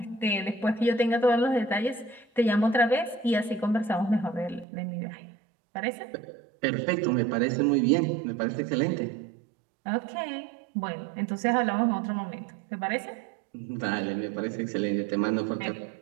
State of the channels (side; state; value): left; drops out; at 4.7 s